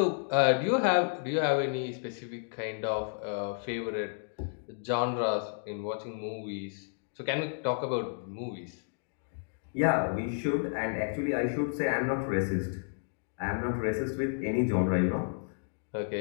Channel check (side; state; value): right; silent; digital silence